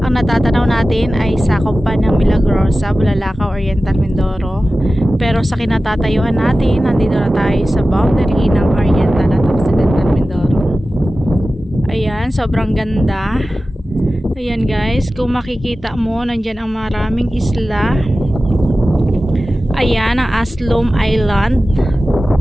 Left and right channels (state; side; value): normal; both; correlation 0.95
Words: Ang natatanaw natin ay sakop pa ng Milagrosa, Bulalakaw, Oriental Mindoro. Pero sa kinatatayuan natin, nandito na tayo sa boundary ng Oriental at Occidental Mindoro. Ayan, sobrang ganda. Ayan guys, kung makikita mo, nandyan ang maraming isla. Ayan, ang Aslom Island.